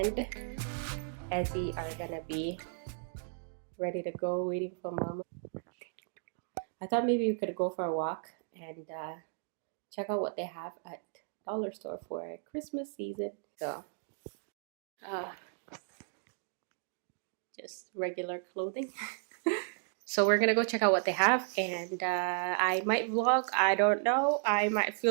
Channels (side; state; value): left; silent; digital silence